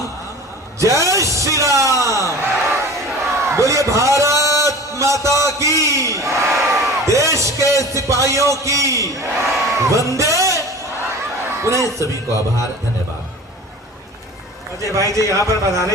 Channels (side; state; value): both; normal; correlation 0.39